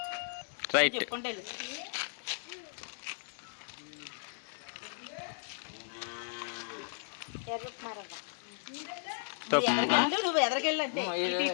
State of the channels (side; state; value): right; silent; digital silence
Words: రైట్. చెప్పుకుంటే ఎర్ర ఉప్మా రవ్వ. నువ్వు ఎదరికెళ్ళంటే